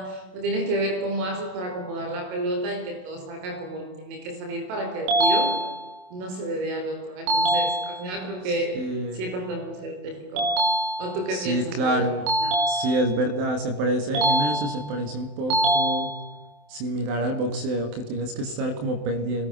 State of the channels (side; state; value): left; late; 27 ms